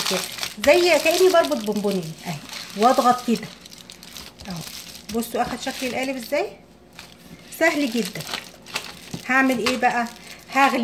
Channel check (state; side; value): identical; both; correlation 1.00